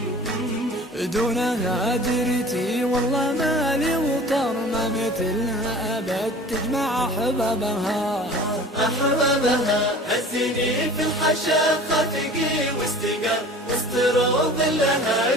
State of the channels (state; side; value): normal; both; correlation 0.42